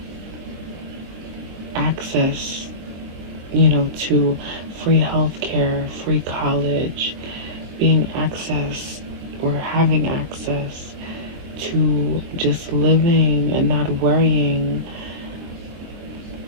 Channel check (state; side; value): late; left; 23 ms